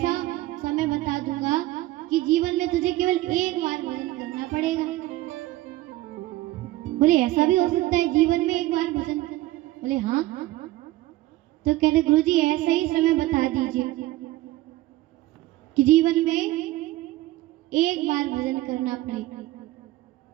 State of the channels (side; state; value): left; quieter; 16.8 dB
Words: समय बता दूंगा कि जीवन में तुझे केवल एक बार भजन करना पड़ेगा। बोले ऐसा भी हो सकता है जीवन में एक बार भजन? बोले हाँ। तो कहते गुरुजी ऐसा ही समय बता दीजिए कि जीवन में एक बार भजन करना पड़ेगा।